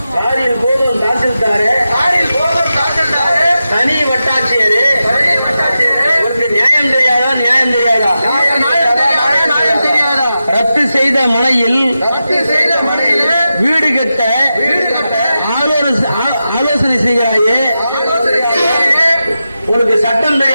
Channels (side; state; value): both; inverted; correlation -0.91